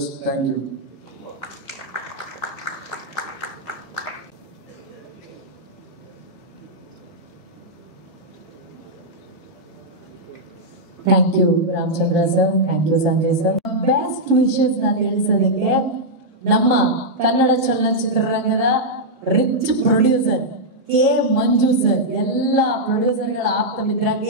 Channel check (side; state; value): both; normal; correlation -0.06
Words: Thank you. Thank you, Ramchandra sir. Thank you, Sanjay sir. Best wishes ನಾನು ತಿಳಿಸೋದಕ್ಕೆ ನಮ್ಮ ಕನ್ನಡ ಚಲನಚಿತ್ರರಂಗದ ರಿಚ್ ಪ್ರೊಡ್ಯೂಸರ್ ಕೆ ಮಂಜು ಸರ್, ಎಲ್ಲ ಪ್ರೊಡ್ಯೂಸರ್ಗಳ ಆಪ್ತ ಮಿತ್ರ